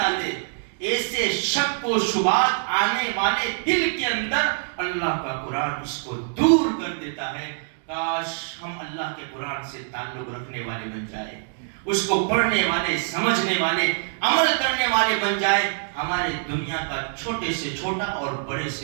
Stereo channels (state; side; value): silent; left; 62 dB below the other